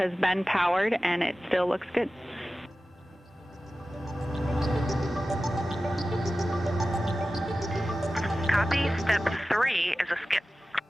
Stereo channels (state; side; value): normal; both; correlation 0.95